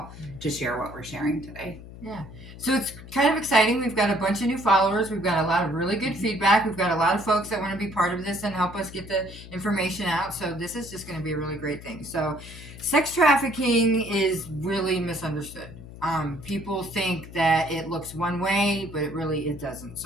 to share what we're sharing today. Yeah. So it's kind of exciting. We've got a bunch of new followers. We've got a lot of really good feedback. We've got a lot of folks that want to be part of this and help us get the information out. So this is just going to be a really great thing. So sex trafficking is really misunderstood. People think that it looks one way, but it doesn't.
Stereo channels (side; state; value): left; noise; hum, 15 dB below the sound